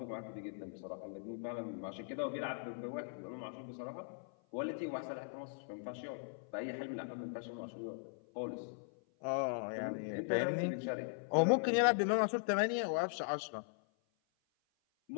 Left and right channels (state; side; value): silent; right; 51 dB below the other